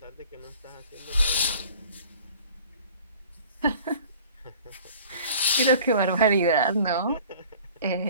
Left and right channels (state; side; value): inverted; both; correlation -0.47